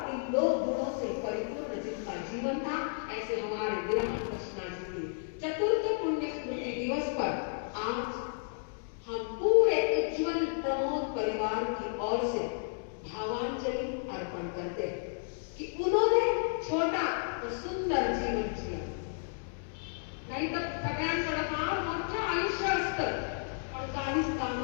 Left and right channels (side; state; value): right; silent; digital silence